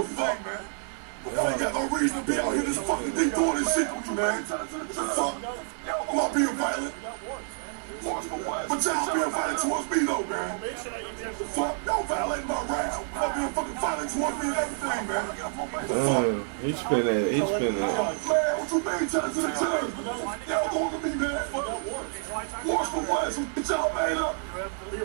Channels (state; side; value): silent; left; 59 dB below the other